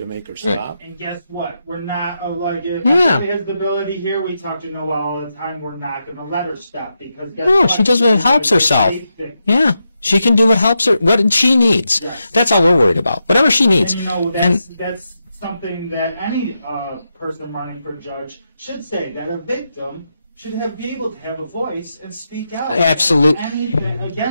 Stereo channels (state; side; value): inverted; both; correlation -0.86